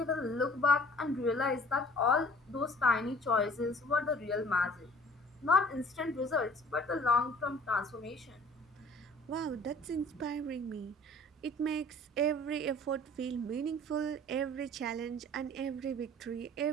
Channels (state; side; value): normal; both; correlation 0.51